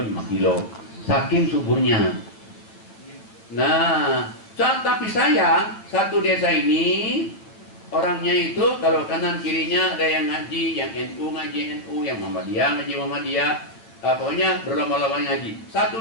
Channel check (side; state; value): right; late; 8.7 ms